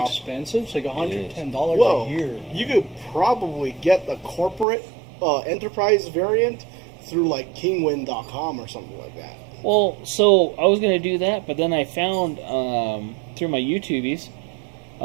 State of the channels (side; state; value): left; drops out; at 4.7 s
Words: expensive. It's like $110 Whoa. a year. You could probably get the corporate enterprise variant through like kingwin.com or something like that. Well, so I was going to do that, but then I found through my YouTubies,